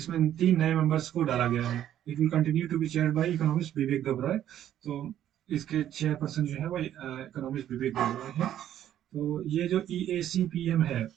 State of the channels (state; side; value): quieter; left; 11.3 dB